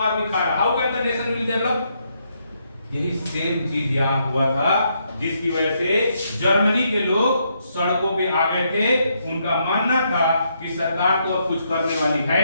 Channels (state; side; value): inverted; both; correlation -0.77